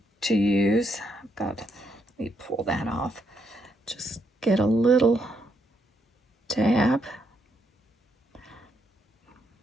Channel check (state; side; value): normal; both; correlation 0.77